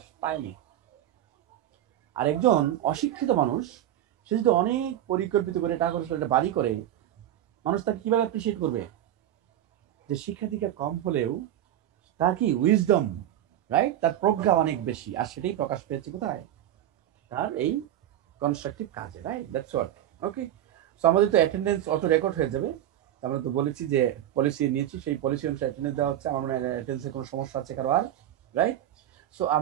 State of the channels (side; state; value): left; quieter; 12.1 dB